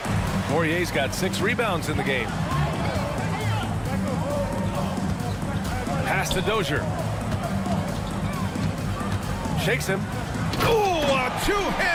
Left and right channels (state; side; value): identical; both; correlation 1.00